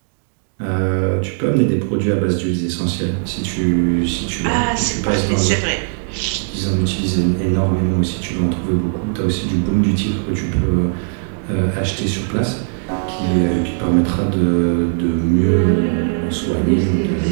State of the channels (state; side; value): silent; left; digital silence